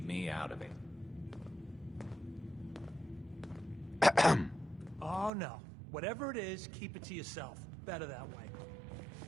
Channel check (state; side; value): drops out; left; at 5.3 s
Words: me out of it. Oh, no. Whatever it is, keep it to yourself. Better that way.